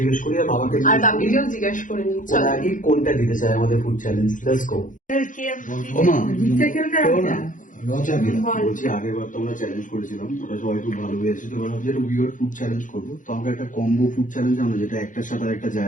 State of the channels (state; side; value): late; right; 0.38 ms